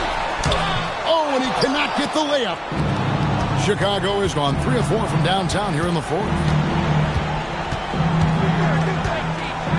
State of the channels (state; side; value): identical; both; correlation 1.00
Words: Oh, and he cannot get the layup. Chicago has gone 3 of 4 from downtown here in the fourth.